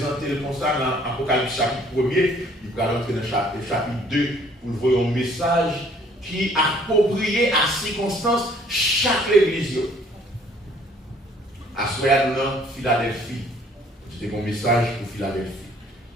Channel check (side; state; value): both; normal; correlation 0.59